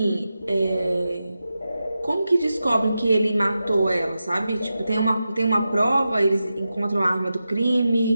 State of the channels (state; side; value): inverted; both; correlation -0.91